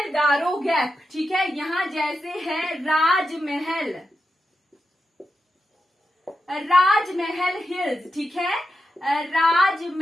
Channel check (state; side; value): normal; both; correlation 0.88